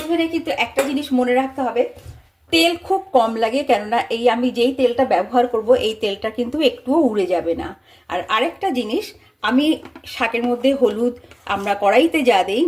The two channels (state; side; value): identical; both; correlation 1.00